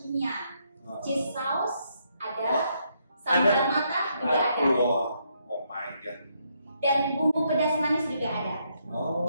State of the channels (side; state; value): both; inverted; correlation -0.75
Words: Cheese sauce ada, sambal mata juga ada. Oh my god. Dan bumbu pedas manis juga ada.